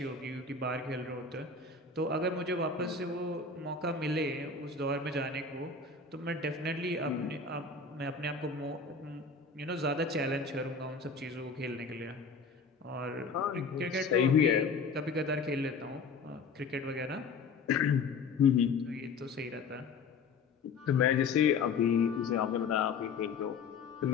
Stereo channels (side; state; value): right; quieter; 4.8 dB